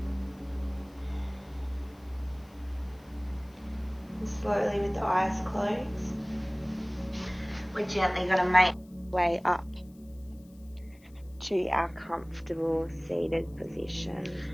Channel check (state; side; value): noise; left; hiss, 30 dB below the sound